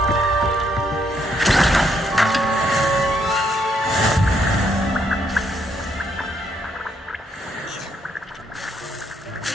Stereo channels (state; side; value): normal; both; correlation 0.73